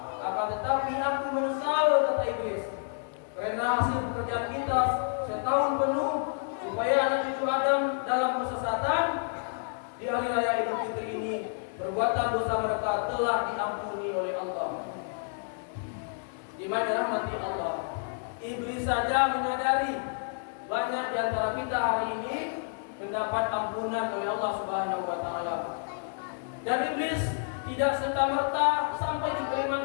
akan tetapi aku menyesal," kata iblis, "karena hasil pekerjaan kita setahun penuh supaya anak cucu Adam dalam kesesatan. Di hari raya Idul Fitri ini perbuatan dosa mereka telah diampuni oleh Allah." Di mana rahmati Allah, iblis saja menyadari banyak di antara kita hari ini mendapat ampunan oleh Allah Subhanahu wa taala. Dan iblis tidak serta-merta sampai di kalimat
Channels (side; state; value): right; silent; 58 dB below the other